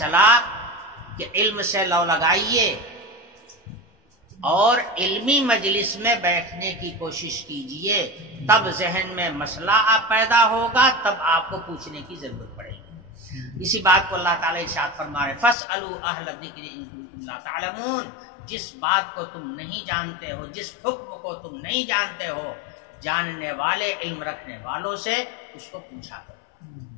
کہ علم سے لو لگائیے اور علمی مجلس میں بیٹھنے کی کوشش کیجئے تب ذہن میں مسئلہ آپ پیدا ہوگا تب آپ کو پوچھنے کی ضرورت پڑے گی. اسی بات کو اللہ تعالیٰ ارشاد فرما رہے فَاسْأَلُوا أَهْلَ الذِّكْرِ إِن كُنتُمْ لَا تَعْلَمُونَ. جس بات کو تم نہیں جانتے ہو جس حکم کو تم نہیں جانتے ہو جاننے والے علم رکھنے والوں سے اس کو پوچھا کرو.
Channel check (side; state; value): right; drops out; at 15.6 s